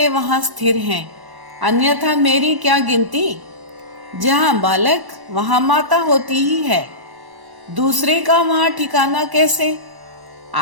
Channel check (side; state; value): left; late; 1.1 ms